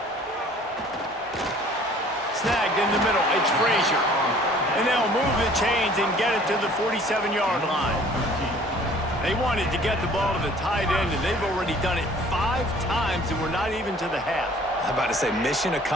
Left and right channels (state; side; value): normal; both; correlation 0.53